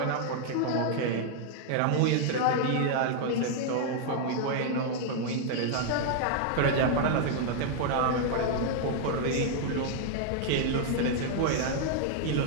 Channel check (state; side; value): different; both; correlation -0.01